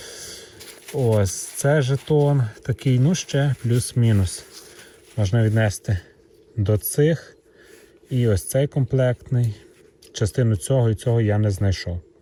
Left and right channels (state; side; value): identical; both; correlation 1.00